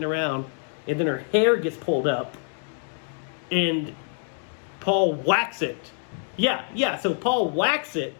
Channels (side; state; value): right; silent; 56 dB below the other